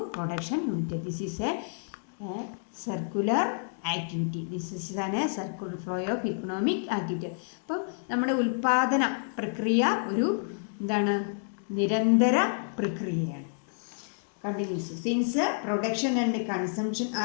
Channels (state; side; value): silent; right; digital silence